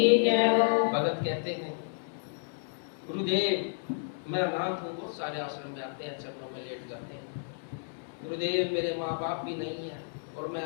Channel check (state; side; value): silent; right; digital silence